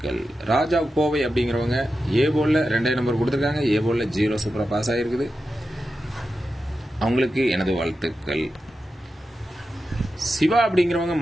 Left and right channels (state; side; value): normal; both; correlation 0.91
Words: ராஜா கோவை அப்படிங்கிறவங்க ஏ போர்டில் 2 நம்பர் கொடுத்துருக்காங்க. ஏ போர்டில் 0 சூப்பராக பாஸ் ஆகிருக்குது. அவங்களுக்கு எனது வாழ்த்துக்கள். சிவா அப்படிங்கிறவங்க